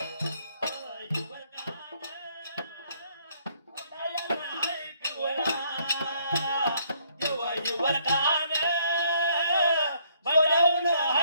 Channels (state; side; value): inverted; both; correlation -0.67